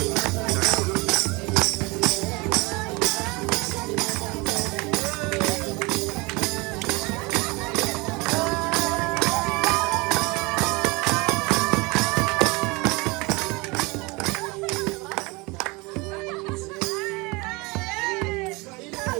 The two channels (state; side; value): quieter; left; 25.7 dB